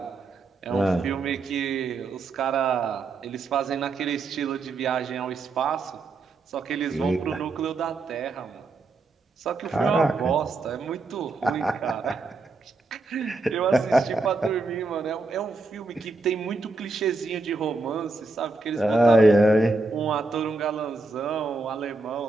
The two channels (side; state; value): left; quieter; 3.4 dB